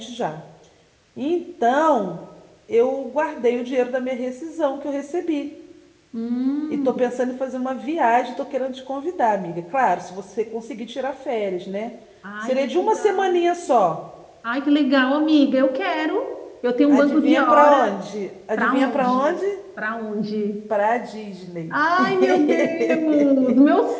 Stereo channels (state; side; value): identical; both; correlation 1.00